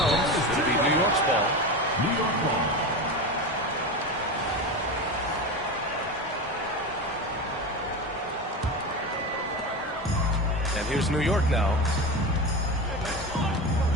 It'll be New York's ball. New York ball. And here's New York now.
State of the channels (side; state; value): both; normal; correlation 0.23